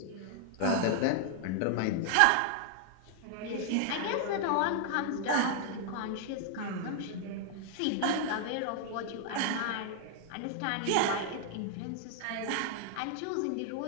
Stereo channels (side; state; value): both; different; correlation 0.00